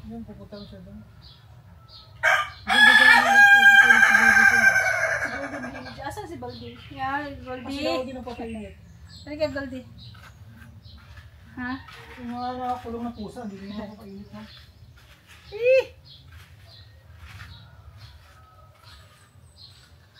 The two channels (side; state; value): both; identical; correlation 1.00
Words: Yun, pupunta ko siya doon. Yun, doon sa baby ko. Si Baldi mahilig. Asan si Baldi? Yeah, Baldi. Kasi ako din ang papainit. Halika, Baldi. Ha? Yung mga nakakulong na pusa, hindi rin ako papainit, no? Eh!